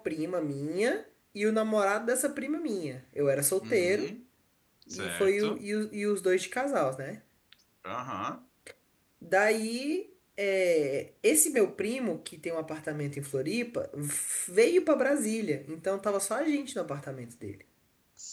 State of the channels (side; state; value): both; identical; correlation 1.00